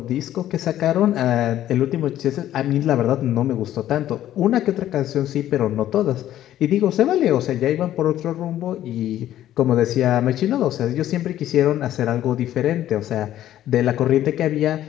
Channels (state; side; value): quieter; right; 12.5 dB